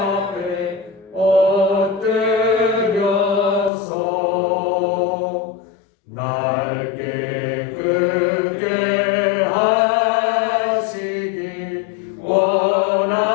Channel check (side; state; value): right; drops out; at 3.7 s